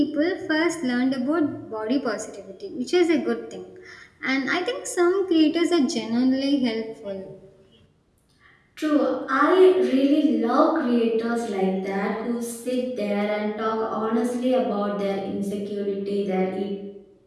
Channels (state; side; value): identical; both; correlation 1.00